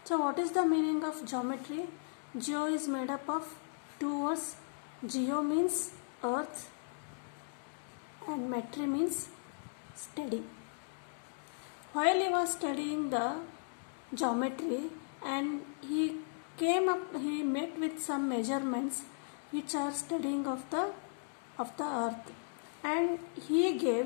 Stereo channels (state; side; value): silent; right; digital silence